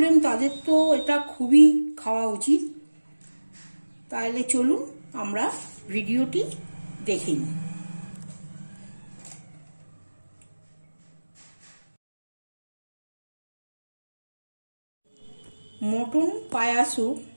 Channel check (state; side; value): inverted; both; correlation -1.00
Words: তাদের তো এটা খুবই খাওয়া উচিত। তাহলে চলুন আমরা ভিডিওটি দেখে নিই। মটন পায়া স্যুপ